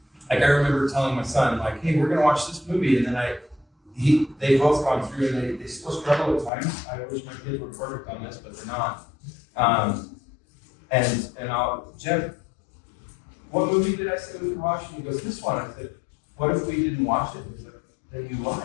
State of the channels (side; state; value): right; drops out; at 6.5 s